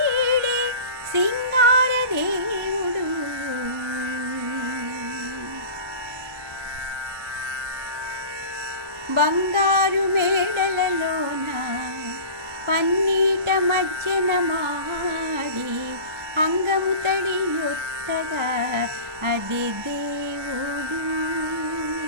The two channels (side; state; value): left; late; 1.2 ms